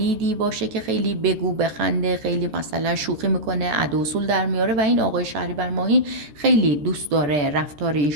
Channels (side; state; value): left; late; 13 ms